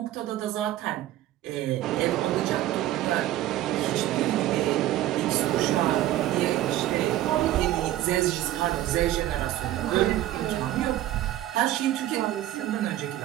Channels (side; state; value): left; quieter; 13.9 dB